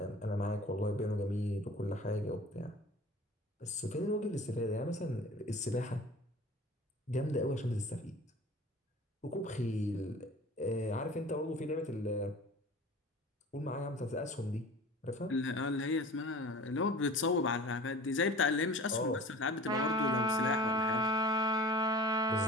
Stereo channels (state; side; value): normal; both; correlation 0.41